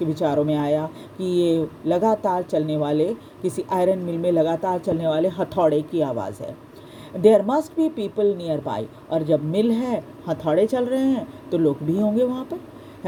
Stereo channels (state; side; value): identical; both; correlation 1.00